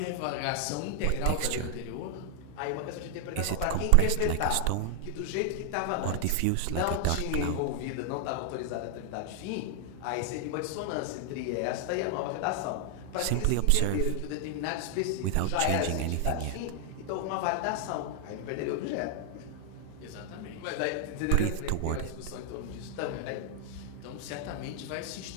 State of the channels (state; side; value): different; both; correlation 0.00